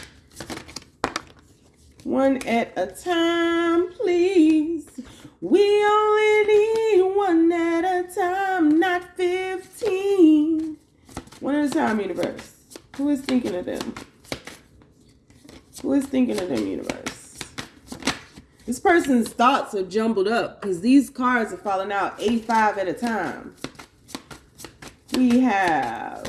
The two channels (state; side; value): identical; both; correlation 1.00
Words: One at a time, please. We only need one at a time, not 15. One at a time, universe. Who is thinking of them? Who is thinking of them, universe? This person's thoughts are jumbled up because these cards are falling out 85 at a time. We have